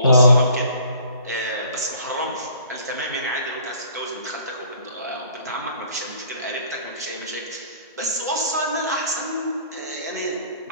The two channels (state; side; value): inverted; both; correlation -0.53